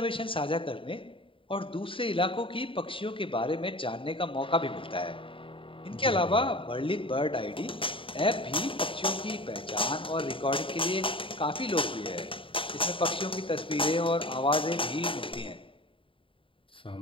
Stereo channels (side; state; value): right; late; 0.25 ms